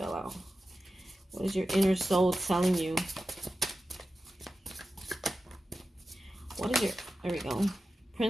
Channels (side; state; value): both; normal; correlation 0.93